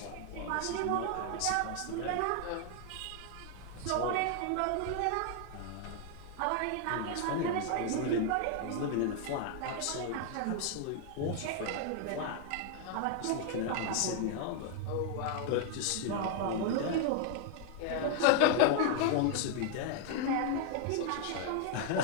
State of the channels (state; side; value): different; both; correlation 0.00